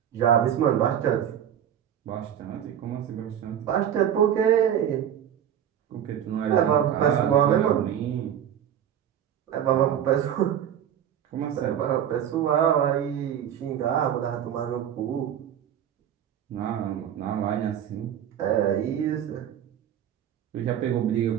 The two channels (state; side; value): quieter; left; 9.8 dB